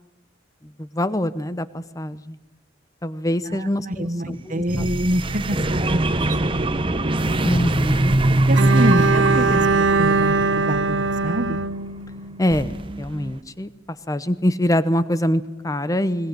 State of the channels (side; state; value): both; normal; correlation 0.64